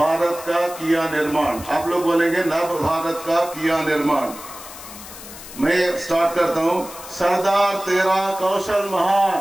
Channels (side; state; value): left; noise; hiss, 14 dB below the sound